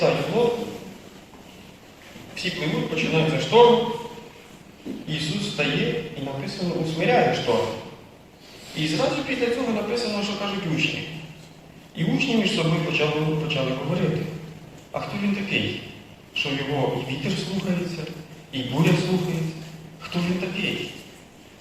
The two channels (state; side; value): identical; both; correlation 1.00